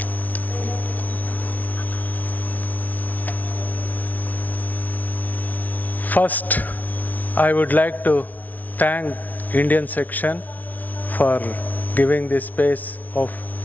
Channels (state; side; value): late; right; 0.077 ms